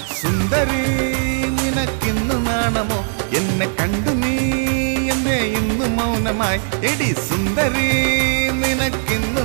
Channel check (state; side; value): silent; left; digital silence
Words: സുന്ദരി നിനക്കിന്ന് നാണമോ എന്നെ കണ്ടു നീ എന്തേ ഇന്ന് മൗനമായി. എടി സുന്ദരി നിനക്കിന്ന്